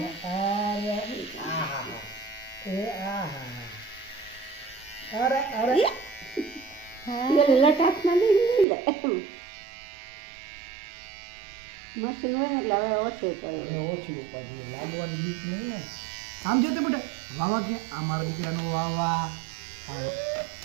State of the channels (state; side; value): drops out; left; at 8.7 s